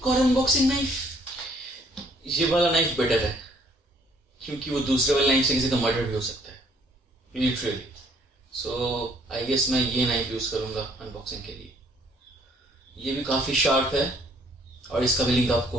और अनबॉक्सिंग नाइफ। ये वाला नाइफ बेटर है क्योंकि वो दूसरे वाले नाइफ से किसी का मर्डर भी हो सकता है, लिटरली। सो आई गेस मैं ये नाइफ यूज करूंगा अनबॉक्सिंग के लिए। ये भी काफी शार्प है और इसका भी लिंक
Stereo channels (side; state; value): both; normal; correlation 0.62